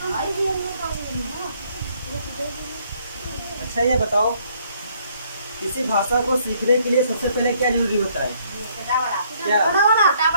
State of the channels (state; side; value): inverted; both; correlation -0.66